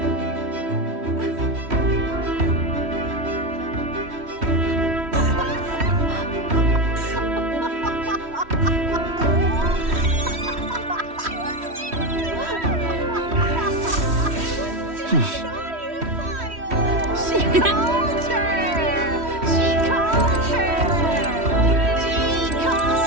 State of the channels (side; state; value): left; late; 3.1 ms